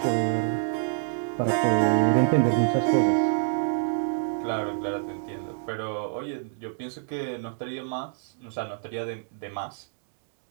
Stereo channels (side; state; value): left; silent; digital silence